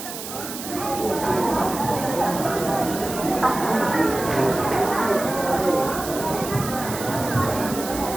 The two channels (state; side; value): noise; right; hiss, 9 dB below the sound